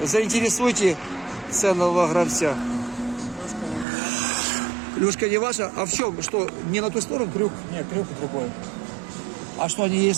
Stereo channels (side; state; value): left; drops out; at 3.9 s